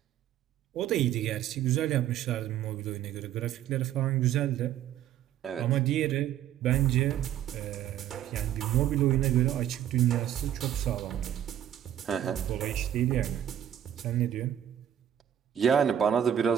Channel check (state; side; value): quieter; left; 10.7 dB